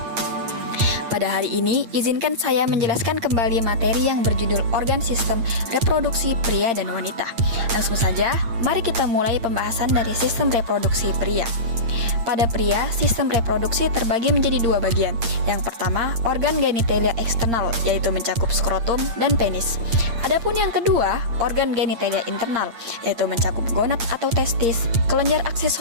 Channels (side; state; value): left; late; 8.7 ms